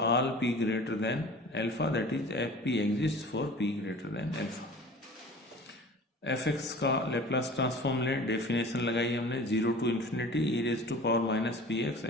all p greater than alpha, that is fp exists for p greater than alpha। f(x) का Laplace transform लें, definition लगाई हमने 0 to infinity e raised to power minus px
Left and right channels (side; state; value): both; normal; correlation 0.41